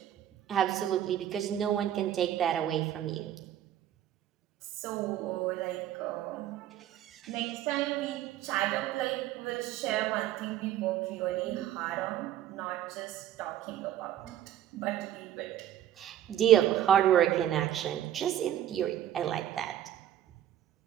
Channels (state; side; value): quieter; left; 11.5 dB